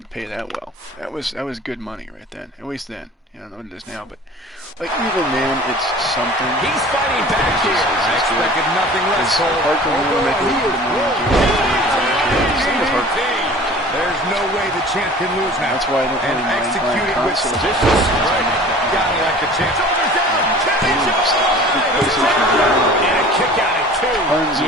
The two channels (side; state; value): both; normal; correlation 0.44